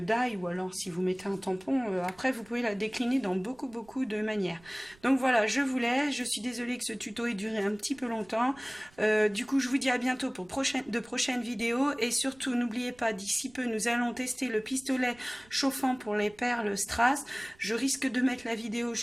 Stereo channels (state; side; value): noise; right; rumble, 27 dB below the sound